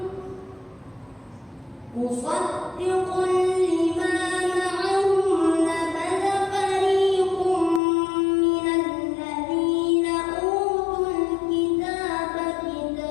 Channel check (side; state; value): right; drops out; at 7.8 s